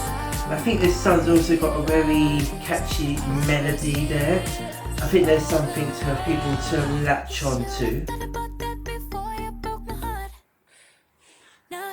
I think this song's also got a very catchy melody there. I think there's something for people to latch on to.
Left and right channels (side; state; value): both; identical; correlation 1.00